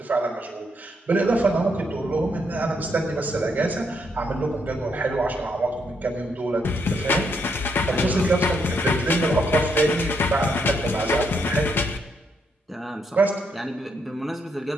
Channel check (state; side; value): normal; both; correlation 0.76